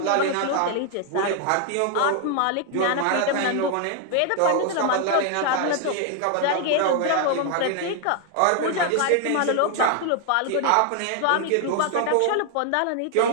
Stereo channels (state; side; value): different; both; correlation 0.00